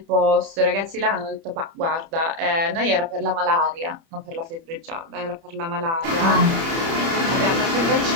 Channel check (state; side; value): late; left; 30 ms